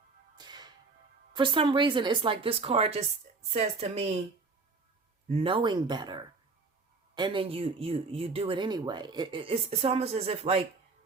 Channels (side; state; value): left; quieter; 4.1 dB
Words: For some reason, it's like this card just says to me, knowing better, and then you do it anyway. It's almost as if like